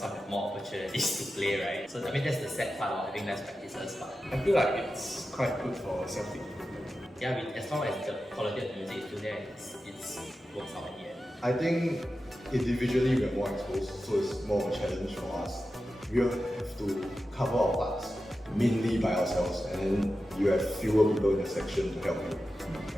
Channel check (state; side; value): normal; both; correlation 0.92